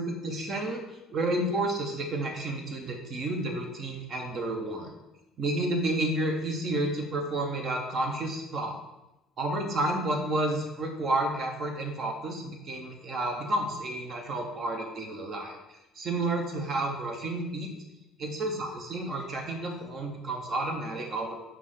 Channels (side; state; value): both; normal; correlation 0.50